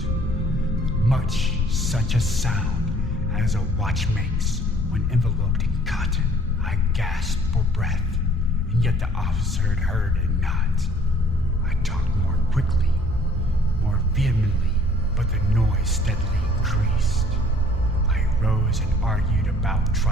much such a sound as a watch makes when enveloped in cotton. I gasped for breath, and yet the officer had heard it not. I talked more quickly, more vehemently, but the noise steadily increased. I rose and argued about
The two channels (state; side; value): normal; both; correlation 0.57